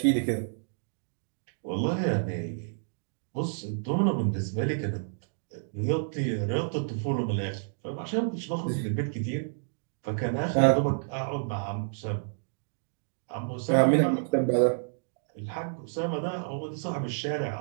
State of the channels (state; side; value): silent; left; digital silence